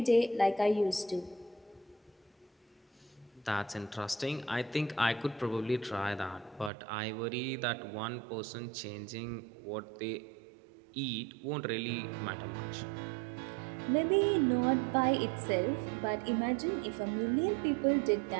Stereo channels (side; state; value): left; drops out; at 6.7 s